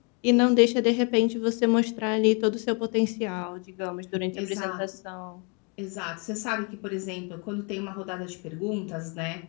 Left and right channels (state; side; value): quieter; right; 34.5 dB